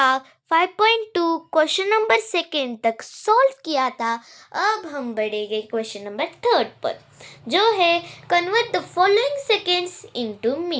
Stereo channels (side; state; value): both; identical; correlation 1.00